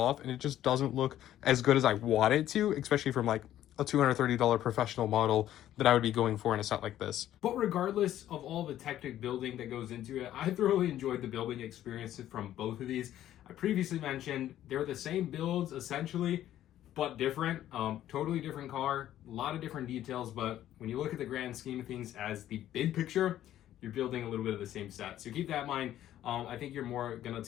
and it just doesn't look as good as I want it to, especially from like a $230 professional model that I would be going for in a set like this. But regardless of all the Technic building that goes into it, I thoroughly enjoyed the building experience from both of these. I previously mentioned they're the same builds essentially, but different. Totally different car, a lot of different details, but when you look at the grand scheme of things as the big picture, you're building a little bit of the same set. So keep that in mind. I think you're more gonna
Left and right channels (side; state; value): right; quieter; 12.4 dB